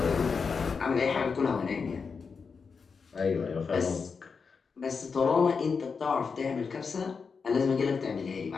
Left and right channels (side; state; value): right; quieter; 5.3 dB